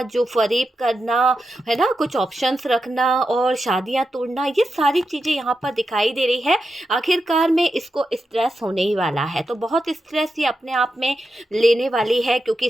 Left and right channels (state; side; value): normal; both; correlation 0.88